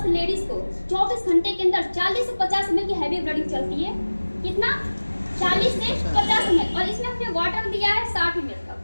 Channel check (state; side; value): inverted; both; correlation -1.00